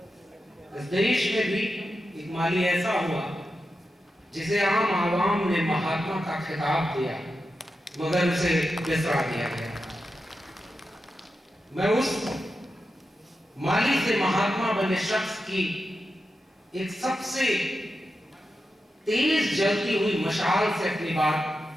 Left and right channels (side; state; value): both; normal; correlation 0.89